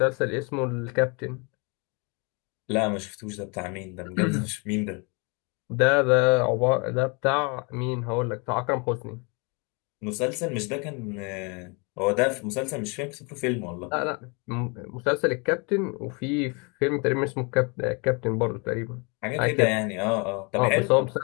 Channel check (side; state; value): right; quieter; 31.9 dB